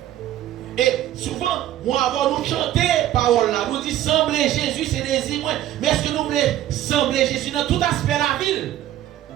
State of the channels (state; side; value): quieter; left; 12.8 dB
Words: Et souvent, moi avant nous chanter parole là, nous dit sembler Jésus c'est désir moi. Mais est-ce que nous voulons sembler Jésus dans tout aspect de la ville?